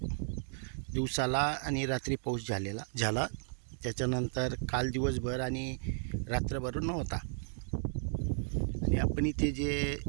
दिवसाला आणि रात्री पाऊस झाला. त्याच्यानंतर काल दिवसभर आणि रात्रभर नव्हता. आणि आपण इथे जे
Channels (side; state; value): left; silent; digital silence